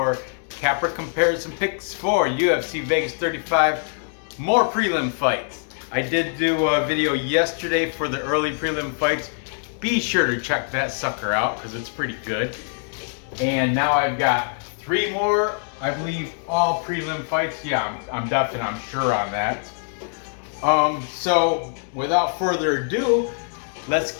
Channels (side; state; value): right; silent; 60 dB below the other